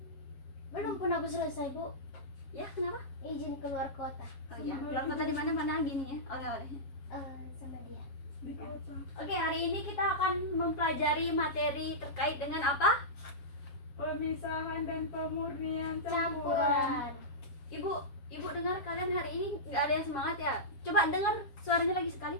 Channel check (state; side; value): late; right; 7.4 ms